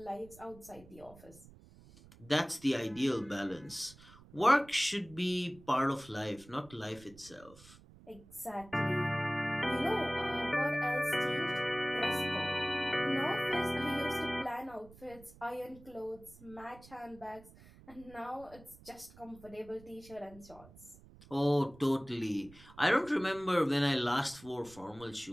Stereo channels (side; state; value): right; noise; rumble, 22 dB below the sound